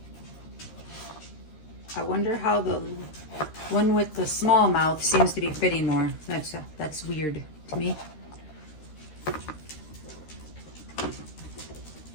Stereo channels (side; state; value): right; late; 13 ms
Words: I wonder how the one with the small mouth seems to be fitting more. That's weird to me.